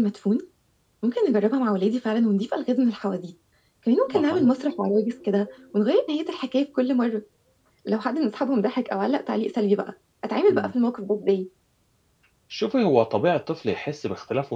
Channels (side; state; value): both; identical; correlation 1.00